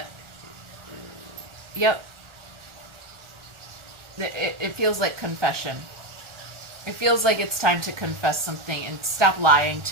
Yep. It feels like confession. It feels like it's time to confess something and stop lying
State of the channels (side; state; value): left; late; 1.4 ms